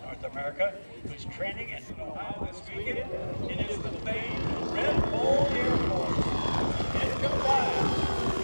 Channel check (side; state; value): both; inverted; correlation -1.00